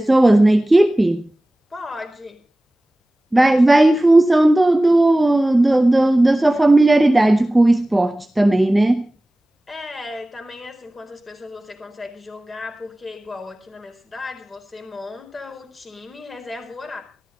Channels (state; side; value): normal; both; correlation 0.98